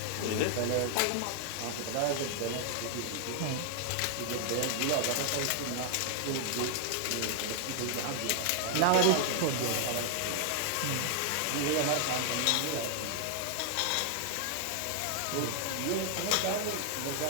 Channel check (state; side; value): different; both; correlation 0.00